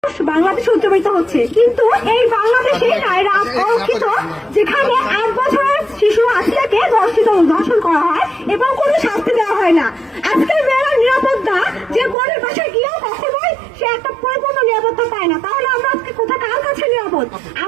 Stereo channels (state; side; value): drops out; left; at 12.2 s